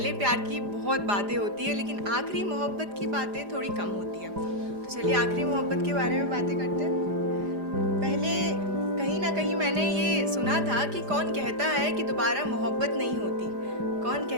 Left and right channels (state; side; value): late; left; 4.9 ms